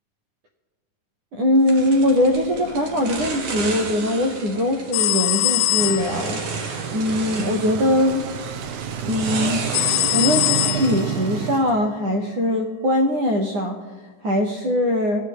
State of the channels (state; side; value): late; left; 9.9 ms